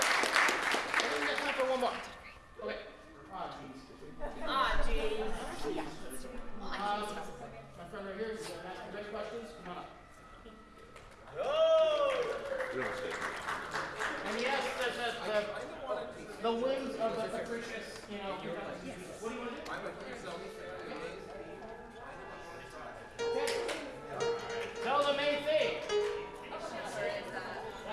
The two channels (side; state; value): both; identical; correlation 1.00